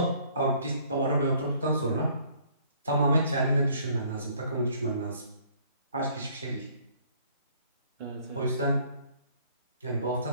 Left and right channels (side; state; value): both; inverted; correlation -0.60